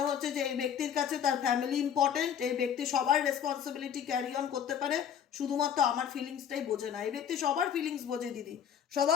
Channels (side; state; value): right; quieter; 8.7 dB